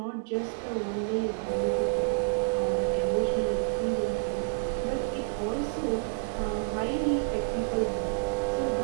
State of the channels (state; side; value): silent; left; digital silence